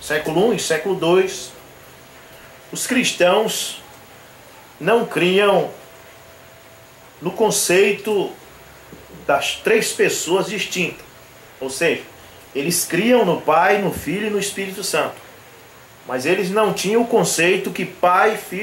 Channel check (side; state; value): both; identical; correlation 1.00